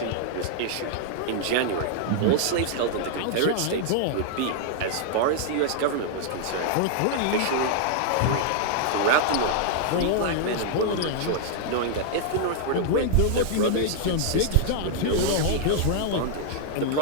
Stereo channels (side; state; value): both; different; correlation -0.01